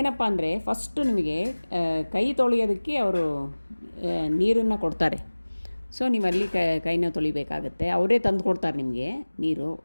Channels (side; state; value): both; inverted; correlation -1.00